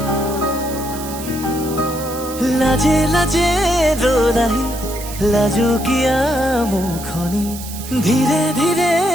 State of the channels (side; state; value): right; noise; hiss, 12 dB below the sound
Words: लाजे लाजे रो रही लाजो किया मुखनी, ধীরে ধীরে